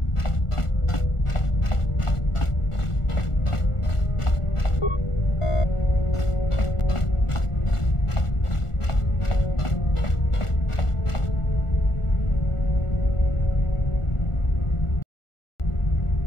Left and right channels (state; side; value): late; right; 1.4 ms